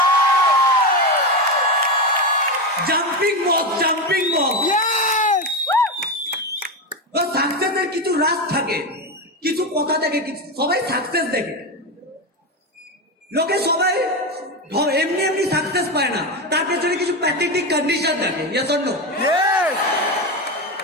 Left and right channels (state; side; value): normal; both; correlation 0.15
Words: Jumping box, jumping box. তো সাকসেসের কিছু রাত থাকে, কিছু কথা থাকে, সবাই সাকসেস দেখে, লোকে সবাই এমনি এমনি সাকসেস পায় না, তার পেছনে কিছু প্যাথেটিক কন্ডিশন থাকে।